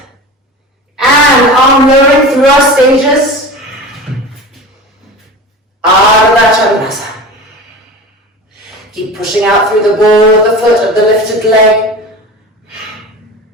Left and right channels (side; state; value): both; normal; correlation 0.33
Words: And arm lowering through our stages, Ardha Chandrasana. Keep pushing out through the ball of the foot of the lifted leg.